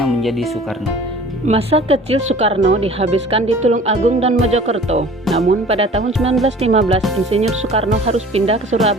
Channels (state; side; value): normal; both; correlation 0.46